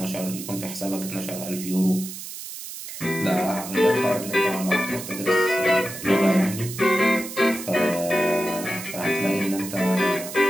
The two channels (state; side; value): noise; right; hiss, 10 dB below the sound